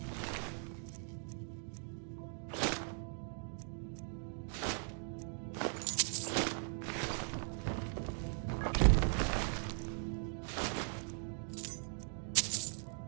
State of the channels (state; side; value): silent; left; 51 dB below the other